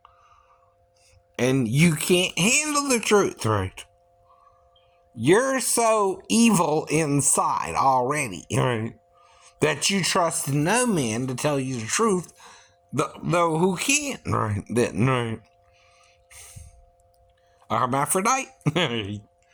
And you can't handle the truth. Right. You're so evil inside already. Right. That you trust no man to tell you the truth, though who can? Right. Then, right. A hermaphrodite?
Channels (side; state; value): both; identical; correlation 1.00